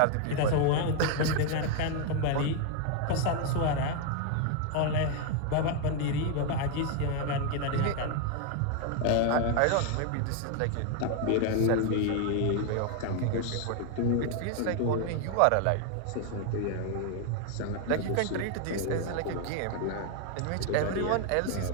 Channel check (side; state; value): both; different; correlation 0.01